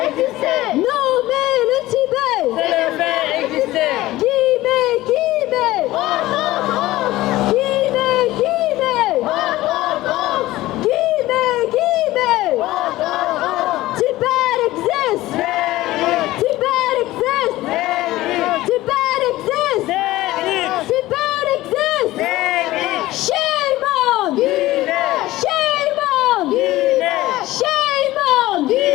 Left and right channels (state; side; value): quieter; right; 17.0 dB